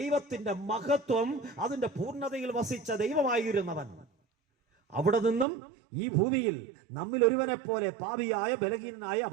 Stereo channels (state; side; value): drops out; left; at 5.5 s